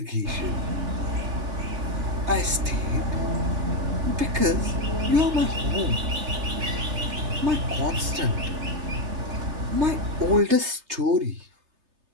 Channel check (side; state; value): left; late; 3.3 ms